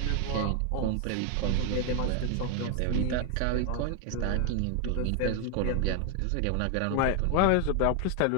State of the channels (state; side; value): different; both; correlation 0.00